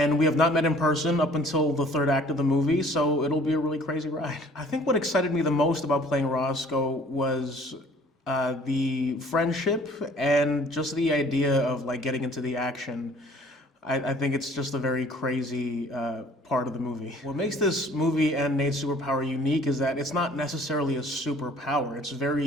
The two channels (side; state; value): both; normal; correlation 0.54